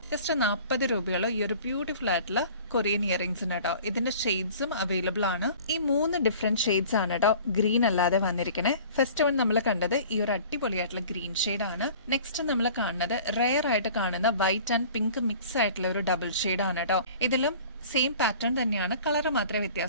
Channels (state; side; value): inverted; both; correlation -0.45